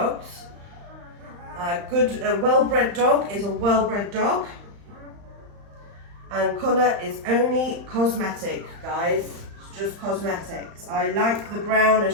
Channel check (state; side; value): late; left; 35 ms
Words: A well-bred dog is a well-bred dog, and colour is only cosmetic, guys. It's just cosmetics. I like the brown,